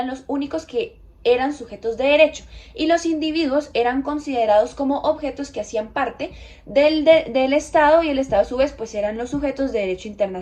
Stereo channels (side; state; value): both; identical; correlation 1.00